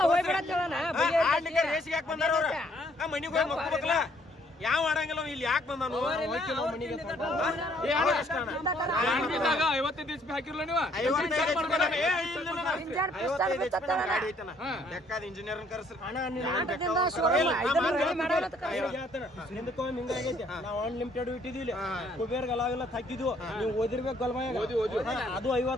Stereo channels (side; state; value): both; normal; correlation 0.64